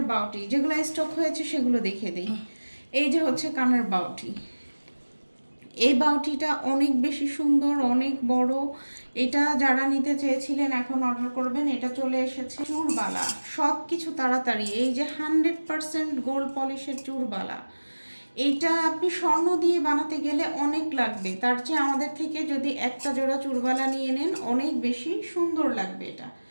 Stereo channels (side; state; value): both; inverted; correlation -1.00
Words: বাউটি, যেগুলো স্টক হয়েছে সেগুলো দেখিয়ে দিই। এই যে হচ্ছে কানের বাউটি। এই বাউটিটা অনেক বেশি সুন্দর, অনেক বড়। এটা যারা নিতে চেয়েছিলেন এখন অর্ডার করবেন। এটা চলে এসেছে চুরবালা, সব কিছু তাড়াতাড়ি। এই যে 100% গোল্ড পলিশের চুরবালা, এইটা আপনি স্বর্ণ দিয়ে বানাতে গেলে অনেক লাগবে। তার চেয়ে আমাদের থেকে যদি একটা জোড়া চুরবালা নিয়ে নেন, অনেক বেশি সুন্দর লাগবে।